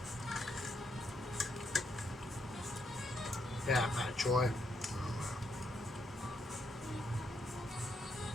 Yeah, Matt Troy.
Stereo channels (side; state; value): both; normal; correlation 0.77